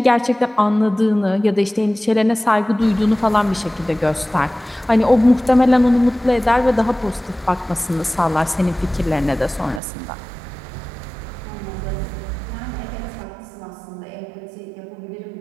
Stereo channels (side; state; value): left; drops out; at 9.8 s